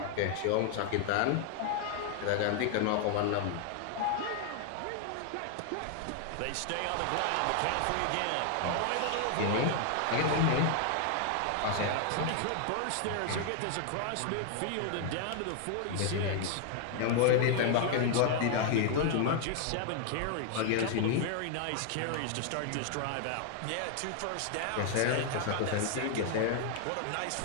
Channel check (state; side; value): different; both; correlation 0.00